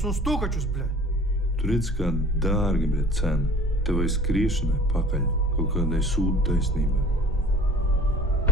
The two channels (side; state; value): both; normal; correlation 0.48